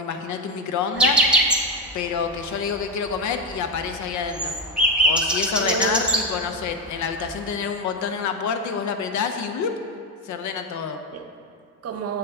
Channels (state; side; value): normal; both; correlation 0.10